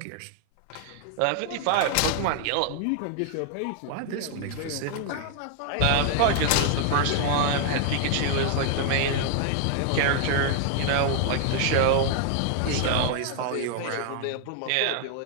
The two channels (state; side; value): different; both; correlation 0.00